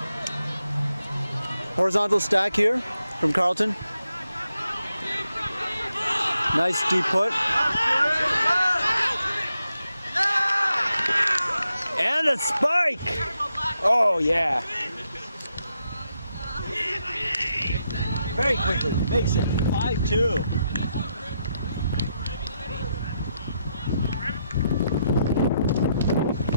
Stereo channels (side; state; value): both; inverted; correlation -0.82